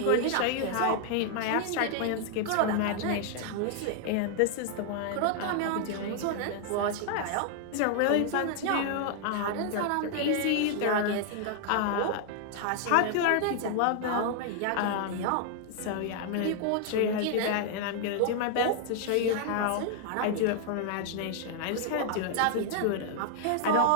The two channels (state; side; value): different; both; correlation 0.00